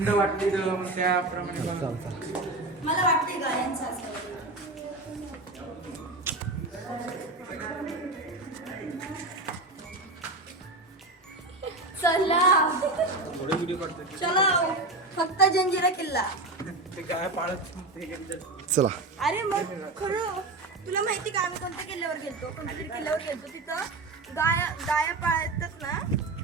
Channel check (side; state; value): left; quieter; 3.0 dB